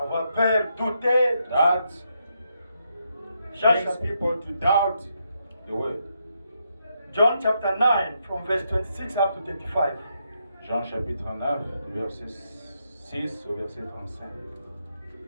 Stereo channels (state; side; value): inverted; both; correlation -0.80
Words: peur, douter. That John brings chapter, people to doubt the word. John chapter 9 from verse 26 up to 35. Jean chapitre 9, verset 6 au verset 35.